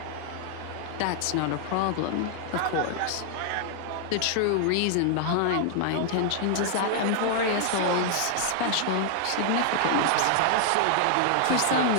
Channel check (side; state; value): both; different; correlation 0.00